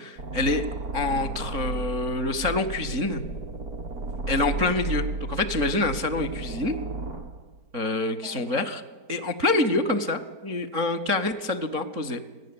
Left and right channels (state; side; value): late; left; 4.4 ms